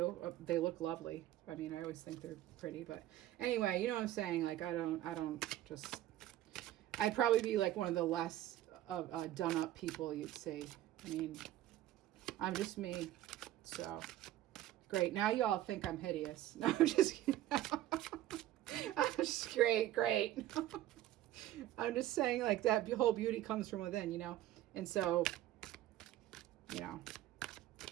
they look lovely. I mean, I always think they're pretty, but anyway, you know what I'm saying? Like, I'd probably be like one of the less done up people you'd see. I mean, I'm just me. So great. Now you all think I'm hideous. No, I'm just kidding. I'm just great. I'm just saying, like, that whole beauty comes from within, you know? And so, you know,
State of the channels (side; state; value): left; quieter; 13.8 dB